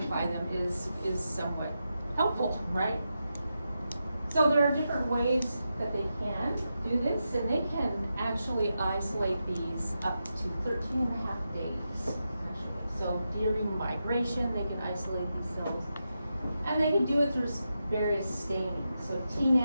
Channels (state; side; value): inverted; both; correlation -0.88